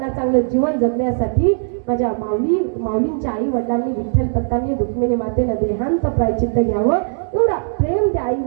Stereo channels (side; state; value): left; silent; 67 dB below the other